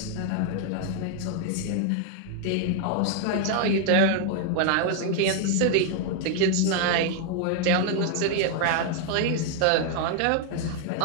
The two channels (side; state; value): both; different; correlation 0.00